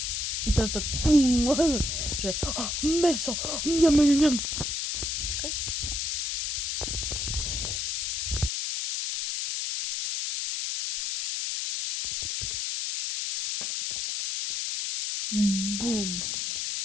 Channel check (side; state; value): left; noise; hiss, 1 dB below the sound